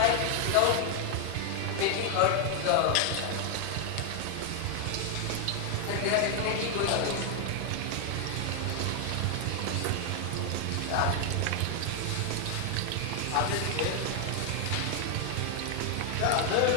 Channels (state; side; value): different; both; correlation 0.00